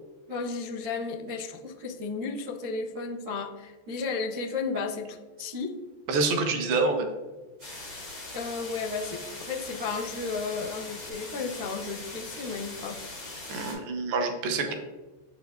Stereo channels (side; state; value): left; late; 14 ms